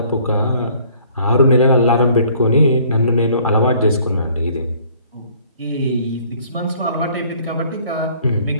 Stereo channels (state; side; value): inverted; both; correlation -0.58